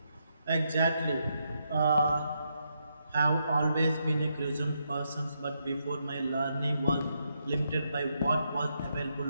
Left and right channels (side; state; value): both; inverted; correlation -0.80